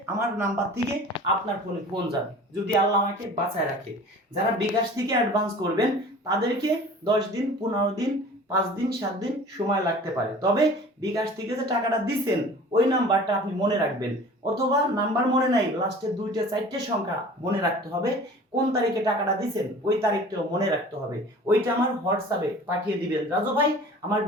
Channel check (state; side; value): normal; both; correlation 0.43